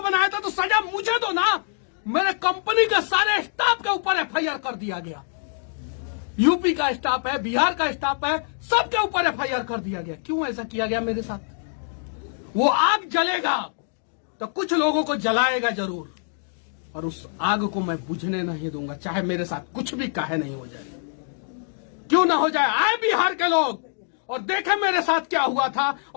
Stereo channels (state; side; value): silent; right; digital silence